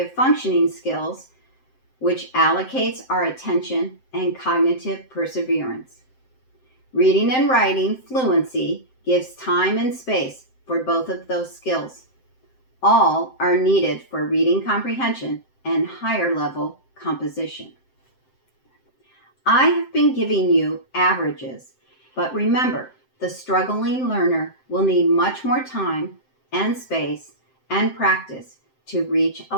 functioning skills, which allocates our attention and cognitive perseverance. Reading and writing fluency gives time and space for both of those skills. All are needed for reading comprehension and higher level composition. I have been giving you averages, but remember, the struggling learner will need much more time and space and practice to reach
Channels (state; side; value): late; right; 7.7 ms